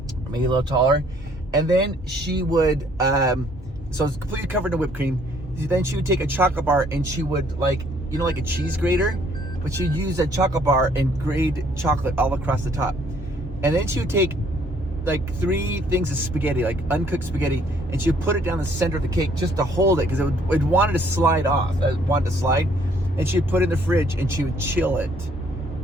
maybe a little taller. And then she would, so it's completely covered in whipped cream. Then she would take a chocolate bar and she would like a cheese grater, but she'd use a chocolate bar and grate chocolate all across the top. And then she would take like 3 things of spaghetti, like uncooked spaghetti, and she would put it down the center of the cake just to hold it, because it wanted to slide off. It wanted to slide. And she would put it in the fridge and she would chill it.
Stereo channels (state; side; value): normal; both; correlation 0.63